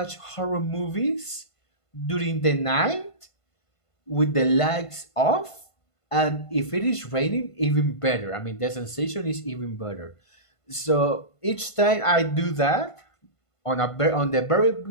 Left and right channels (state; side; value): late; right; 1.5 ms